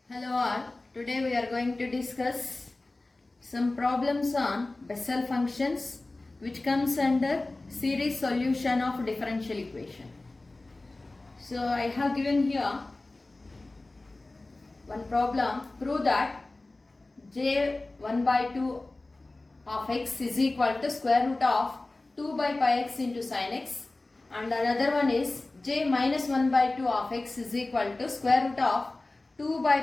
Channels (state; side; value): quieter; right; 3.0 dB